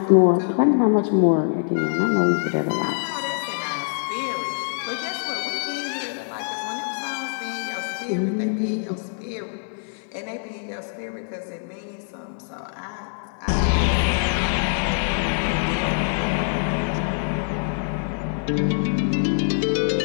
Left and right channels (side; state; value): right; silent; 59 dB below the other